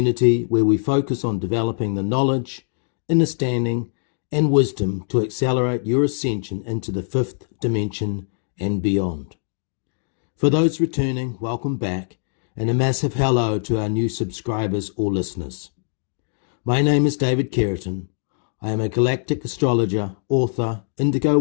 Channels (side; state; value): right; silent; digital silence